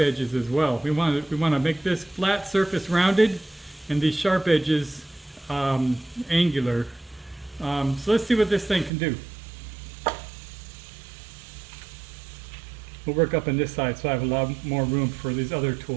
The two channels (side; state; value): left; drops out; at 8.9 s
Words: as well. We want to make this flat surface rounded, and these sharp edges angular. So let's see what this thing can do. We'll work up on this side so I have a lot more room for these other